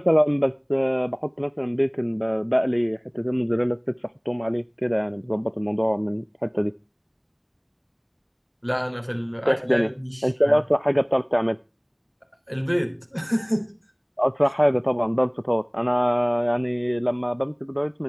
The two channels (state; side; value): identical; both; correlation 1.00